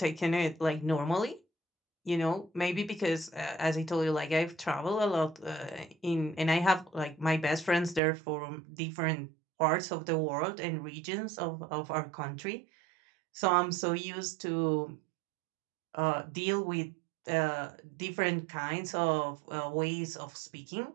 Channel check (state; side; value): drops out; left; at 8.0 s